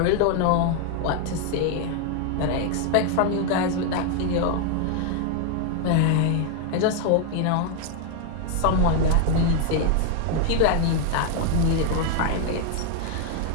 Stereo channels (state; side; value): different; both; correlation 0.00